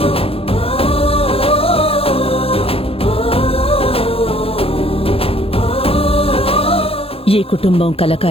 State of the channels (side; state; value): right; late; 0.27 ms